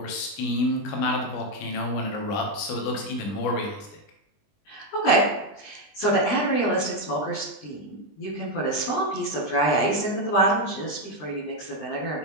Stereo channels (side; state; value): right; late; 20 ms